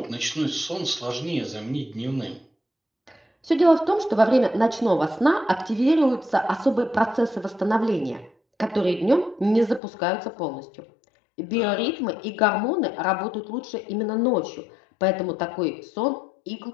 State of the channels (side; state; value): right; drops out; at 9.8 s